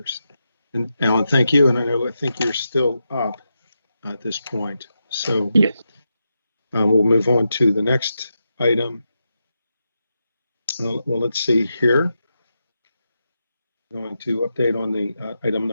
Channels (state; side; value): inverted; both; correlation -0.87